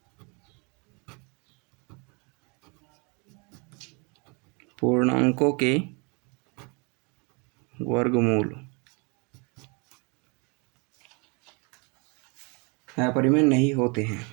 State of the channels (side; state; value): left; quieter; 31.6 dB